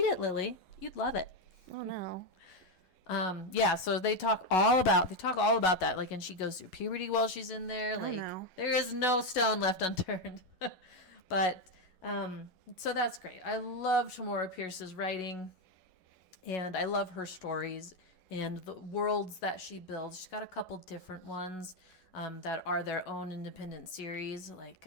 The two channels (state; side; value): late; right; 11 ms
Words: it, Lily. You'd love it. Oh no. Yeah, so they talk all about that, and she goes through puberty while she's in there. no. There is no stone left unturned. But so that's great. I love Tamora Pierce's writing, and I love her stories and the worlds that she builds. She's got a couple different ones that are their own independent series.